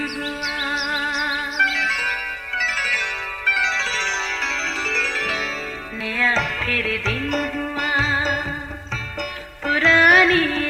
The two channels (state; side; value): identical; both; correlation 1.00